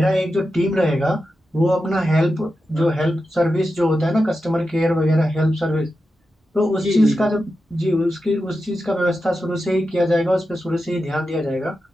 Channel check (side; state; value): both; normal; correlation 0.90